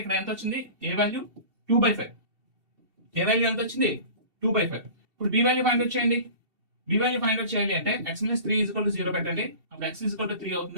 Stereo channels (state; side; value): late; left; 2.7 ms